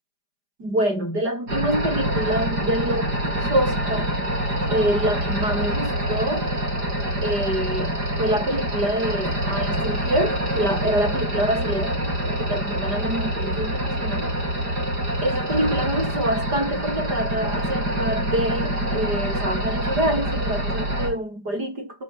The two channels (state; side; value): late; left; 5.0 ms